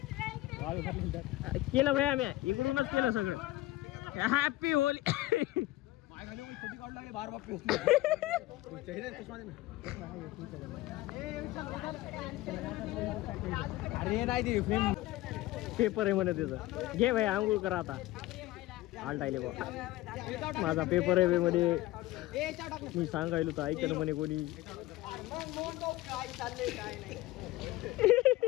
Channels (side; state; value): right; quieter; 17.4 dB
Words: केलं भाई आम्ही इकडूनच केलं सगळं हॅपी होली अरे नाही पेपर आहे म्हणे त्याचं घे भाई आंघोळ करा आता आलटायले बा माझा पेपर आहे मध्ये मी सांगायलो तर ऐकलं म्हणे कोणी